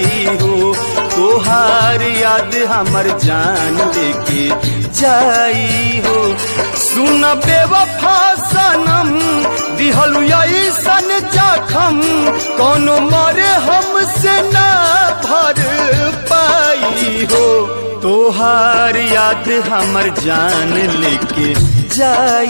हो तोहार याद हमर जान लेके जाई हो सुन बेवफा सनम दिहलु ऐसन जखम कोनो मरे हमसे ना भर पाई हो तोहार याद हमर जान लेके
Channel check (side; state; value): both; inverted; correlation -1.00